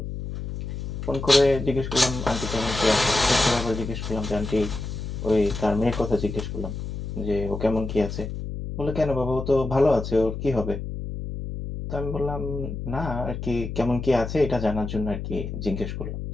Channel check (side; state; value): left; noise; hum, 6 dB below the sound